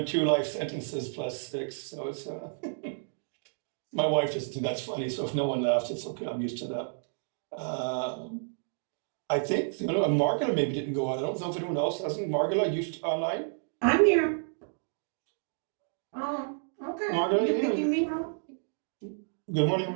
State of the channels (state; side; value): silent; left; digital silence